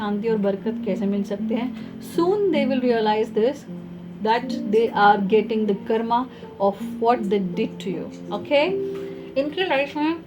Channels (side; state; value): both; identical; correlation 1.00